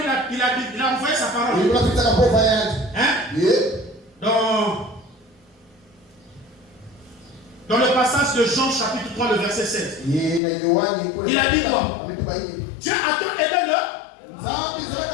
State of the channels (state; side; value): drops out; right; at 10.4 s